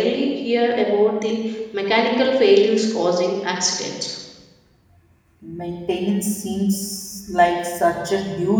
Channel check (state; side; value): identical; both; correlation 1.00